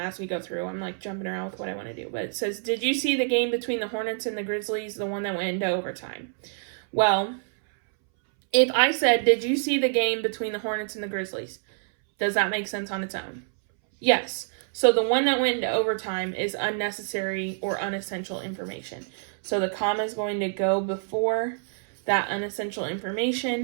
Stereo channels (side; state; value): left; silent; 60 dB below the other